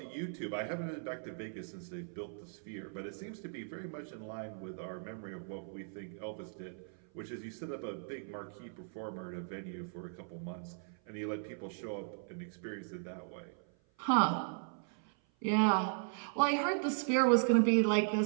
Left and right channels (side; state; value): left; silent; 53 dB below the other